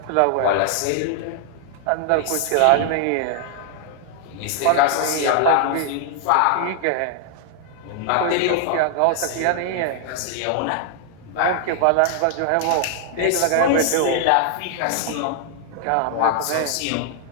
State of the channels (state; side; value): different; both; correlation 0.00